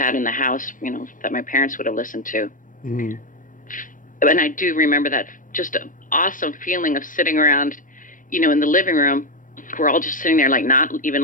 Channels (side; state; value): right; late; 0.38 ms